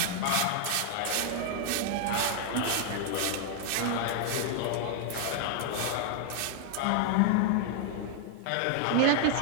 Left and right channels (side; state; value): both; different; correlation 0.00